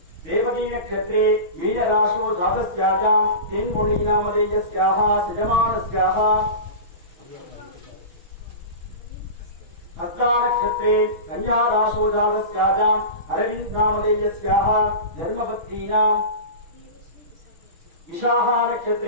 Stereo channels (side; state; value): left; late; 6.1 ms